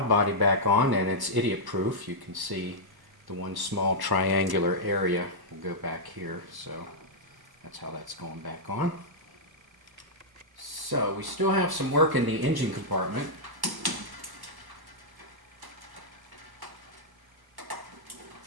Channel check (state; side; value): late; left; 1.1 ms